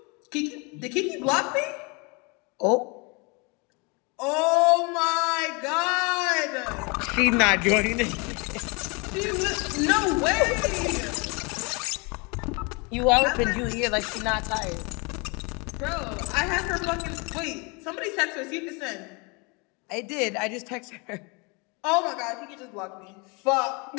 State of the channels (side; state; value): right; quieter; 30.1 dB